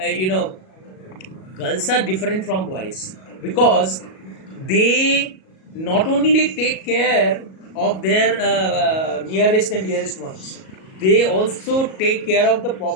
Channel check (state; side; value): late; right; 37 ms